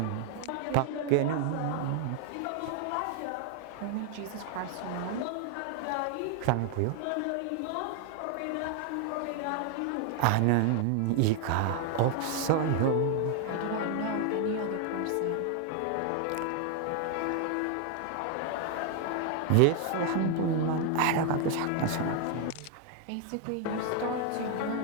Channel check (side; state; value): both; different; correlation 0.00